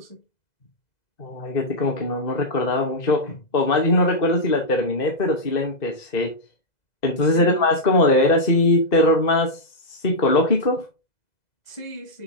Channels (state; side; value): late; right; 2.0 ms